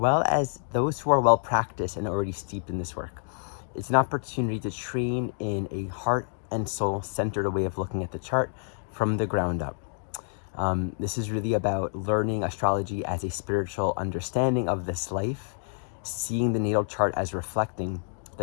as those who are well practiced and already steeped in this work. It's an opportunity to train in a heart and soul centered way of looking at the chart from the ground up. This is really about learning astrology as a spiritual understanding of this life, seeing the natal chart as reflecting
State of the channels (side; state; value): right; silent; 59 dB below the other